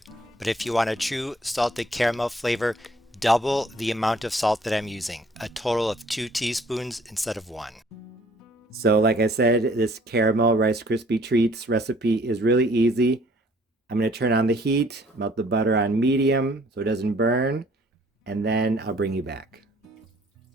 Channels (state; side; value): normal; both; correlation 0.59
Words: but if you want a true salted caramel flavor, double the amount of salt that I'm using, a total of 2 teaspoons instead of 1. So like I said, this caramel Rice Krispie treats recipe is really easy. I'm going to turn on the heat, melt the butter on medium so it doesn't burn, and then I'll bring you back.